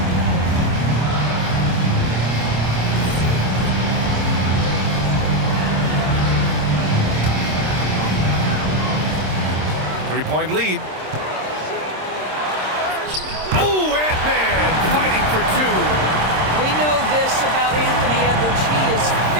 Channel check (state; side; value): late; left; 26 ms